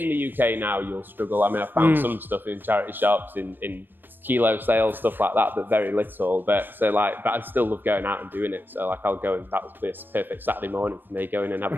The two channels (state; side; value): late; left; 0.094 ms